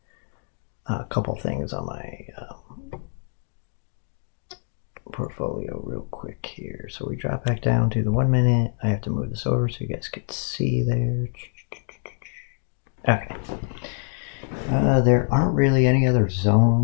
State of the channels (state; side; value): silent; right; 60 dB below the other